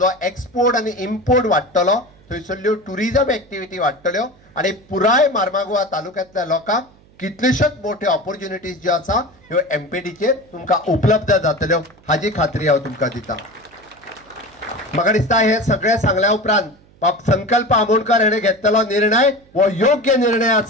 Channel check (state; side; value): noise; right; hum, 29 dB below the sound